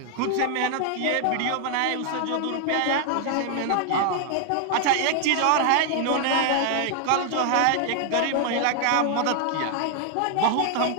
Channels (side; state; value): both; different; correlation 0.00